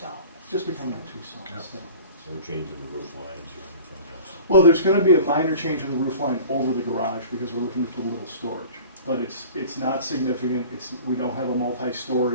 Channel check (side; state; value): both; inverted; correlation -0.43